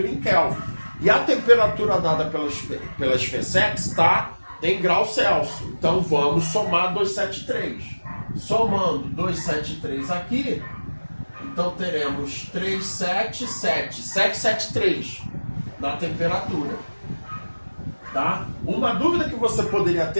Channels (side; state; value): both; inverted; correlation -1.00